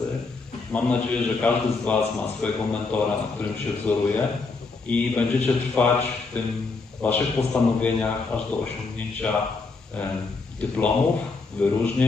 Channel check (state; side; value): quieter; right; 4.1 dB